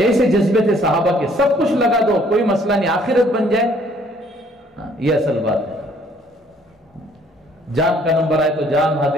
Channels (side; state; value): both; normal; correlation 0.61